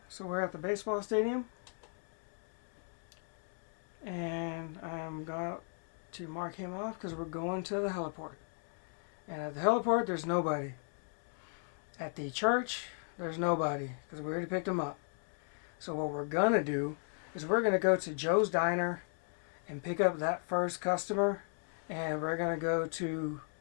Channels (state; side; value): silent; right; 54 dB below the other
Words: so we're at the baseball stadium, and I'm going to mark him off because we're going to the heliport. And at the heliport, there's nobody. At the church, there's nobody because we already picked him up. So what we're going to do is we're going to go to Joe's Diner and pick up that first customer, and we're going to go to